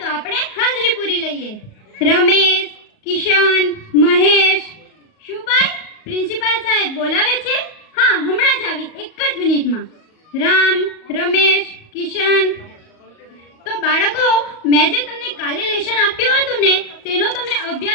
આપણે હાજરી પૂરી લઈએ. રમેશ, કિશન, મહેશ. શું ભાઈ, પ્રિન્સિપાલ સાહેબ બોલાવે છે? હા, હમણાં જ આવી, એક જ મિનિટમાં. રામ, રમેશ, કિશન. તો બાળકો, મેં જે તમને કાલે લેસન આપ્યું હતું ને, તેનો તમે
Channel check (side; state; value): right; late; 38 ms